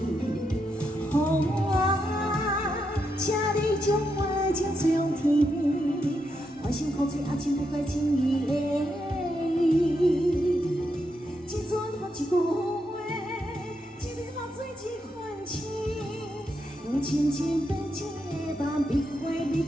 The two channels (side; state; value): both; normal; correlation 0.82